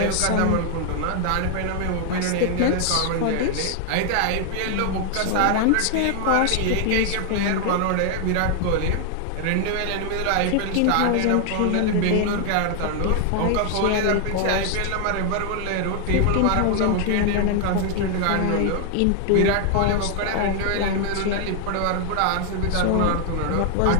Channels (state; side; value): different; both; correlation 0.00